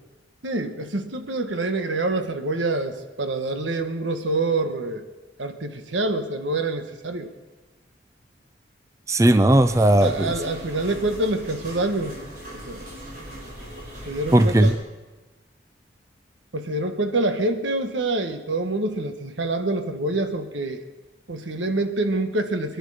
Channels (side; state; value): both; normal; correlation 0.46